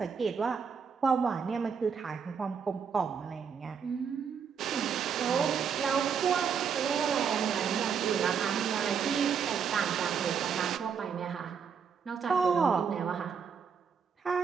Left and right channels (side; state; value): left; quieter; 6.7 dB